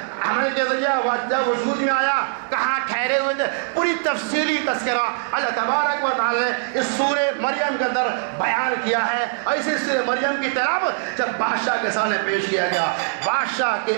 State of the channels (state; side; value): silent; left; digital silence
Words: کے ذریعہ جب وجود میں آیا، کہاں ٹھہرے ہوئے تھے، پوری تفصیلی تذکرہ اللہ تبارک و تعالی نے اس سورہ مریم کے اندر بیان کیا ہے۔ اور اسی سورہ مریم کی تلاوت جب بادشاہ کے سامنے پیش کیا گیا، بادشاہ